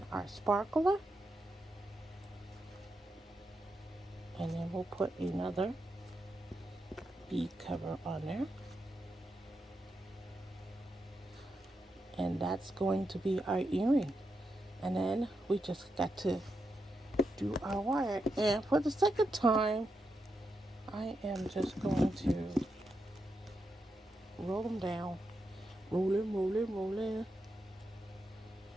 our sparkler. And then we'll put another bead cover on there. And that's going to be our earring. And then we just got to do our wire. And for the second time, I am just going to roll them down. Rolling.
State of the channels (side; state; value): both; normal; correlation 0.85